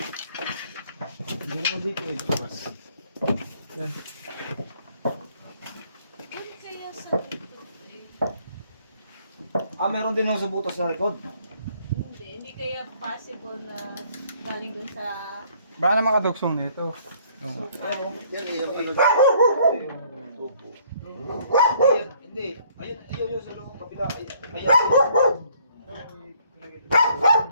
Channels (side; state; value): both; inverted; correlation -0.62